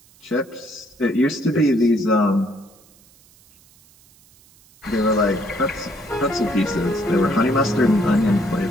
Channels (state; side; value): noise; right; hiss, 29 dB below the sound